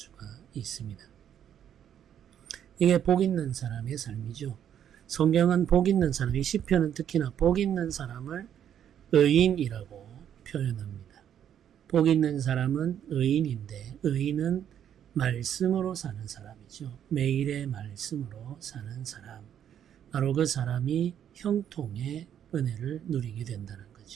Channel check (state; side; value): quieter; left; 9.6 dB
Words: 있습니다. 이게 복 있는 사람의 삶이죠. 성경은 복 있는 사람, 이 시편은 특히나 복 있는 사람을 의인이라고 표현합니다. 복 있는 사람은 의인인데 의인은 말씀으로 사는 사람이죠. 매일의 말씀으로 사는 사람. 바로 그 사람이 형통의 은혜를 누리게 된다는